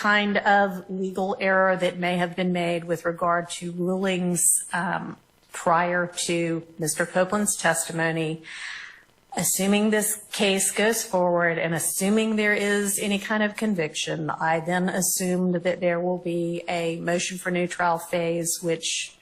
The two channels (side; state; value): both; identical; correlation 1.00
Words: of legal error that may have been made with regard to rulings prior to Mr. Copeland's testimony, assuming this case goes forward and assuming there is any kind of conviction, I then assumed that there will be a motion for new trial phase, which